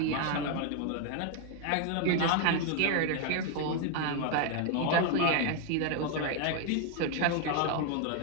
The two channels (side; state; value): both; different; correlation 0.01